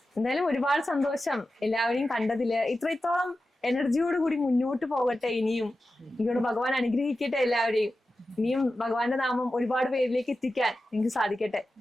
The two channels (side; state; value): both; normal; correlation 0.93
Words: എന്തായാലും ഒരുപാട് സന്തോഷം എല്ലാവരെയും കണ്ടതില്. ഇത്രത്തോളം എനർജിയോട് കൂടി മുന്നോട്ട് പോകട്ടെ. ഇനിയും എനിക്കോട് ഭഗവാൻ അനുഗ്രഹിക്കട്ടെ എല്ലാവരെയും. ഇനിയും ഭഗവാന്റെ നാമം ഒരുപാട് പേരിലേക്ക് എത്തിക്കാൻ എനിക്ക് സാധിക്കട്ടെ.